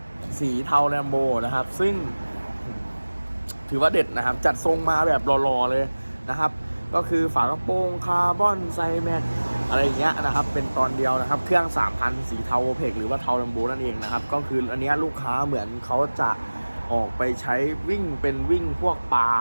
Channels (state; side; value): inverted; both; correlation -1.00